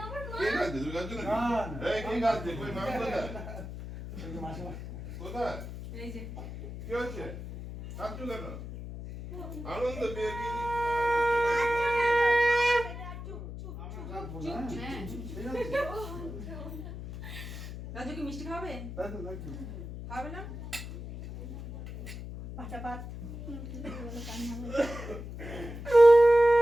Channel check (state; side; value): noise; left; hum, 9 dB below the sound